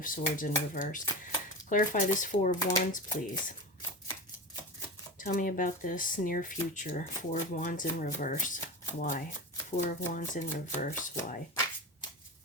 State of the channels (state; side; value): normal; both; correlation 0.24